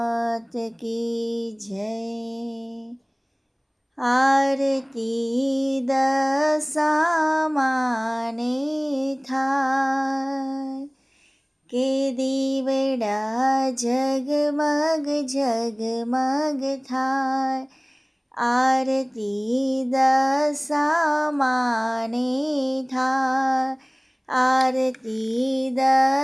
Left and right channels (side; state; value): both; identical; correlation 1.00